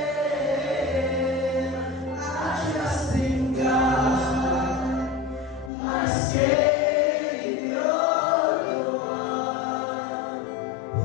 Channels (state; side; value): drops out; right; at 5.7 s